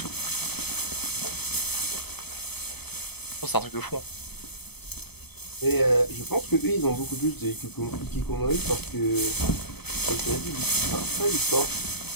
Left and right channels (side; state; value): right; late; 0.98 ms